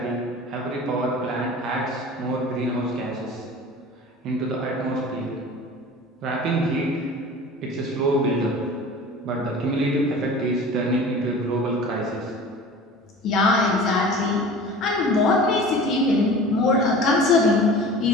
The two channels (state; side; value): normal; both; correlation 0.40